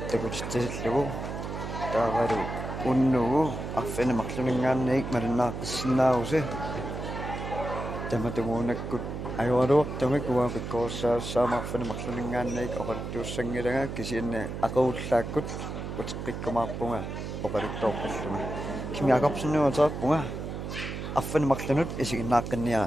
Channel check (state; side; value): noise; right; hum, 6 dB below the sound